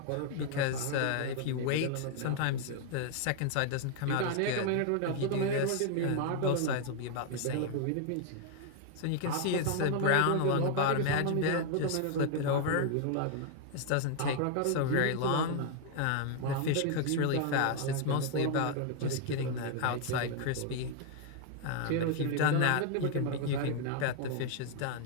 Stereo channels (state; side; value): different; both; correlation 0.00